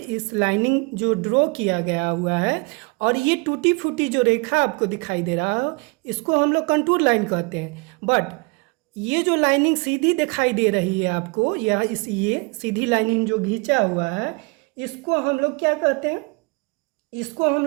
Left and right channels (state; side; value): quieter; left; 29.3 dB